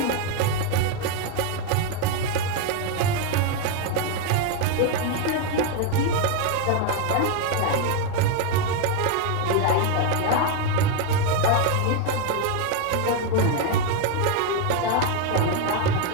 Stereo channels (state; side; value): different; both; correlation 0.01